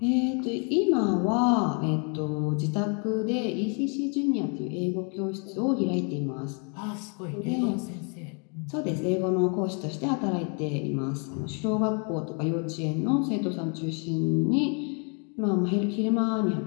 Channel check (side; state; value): right; quieter; 37.9 dB